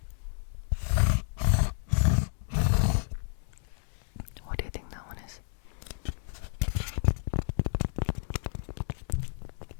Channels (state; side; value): silent; right; 57 dB below the other